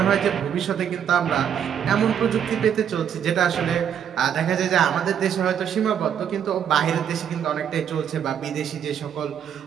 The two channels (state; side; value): quieter; left; 8.7 dB